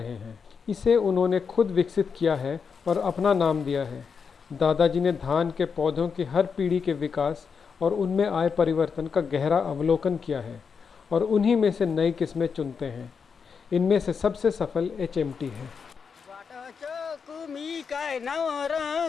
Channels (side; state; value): right; quieter; 6.0 dB